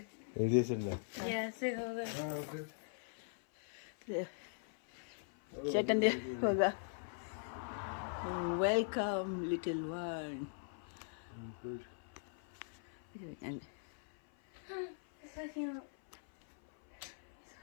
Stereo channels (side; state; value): right; silent; 50 dB below the other